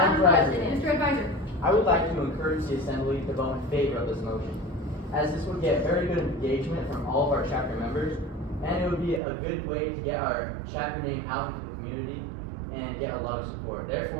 President. Mr. Advisor. I would like to encourage the Assembly to vote in favor of this motion, as this would get very good engagement from all of our chapter members, and it would be a good way to get our chapter name out into the community and get a lot of support.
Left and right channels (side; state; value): left; drops out; at 9.2 s